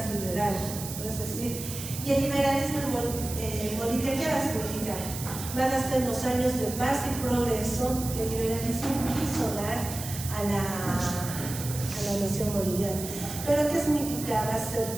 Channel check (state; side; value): noise; right; hiss, 9 dB below the sound